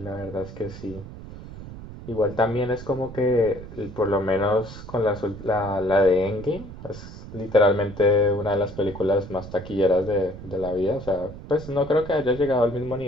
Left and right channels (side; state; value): right; noise; rumble, 13 dB below the sound